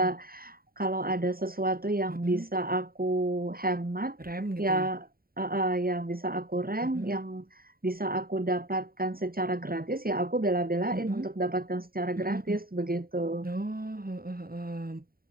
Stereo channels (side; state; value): left; late; 0.43 ms